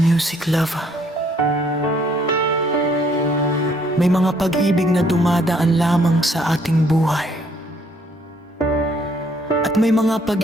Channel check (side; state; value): both; normal; correlation 0.65